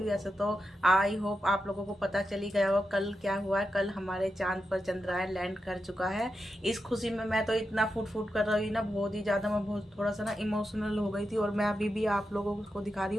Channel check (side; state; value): both; normal; correlation 0.88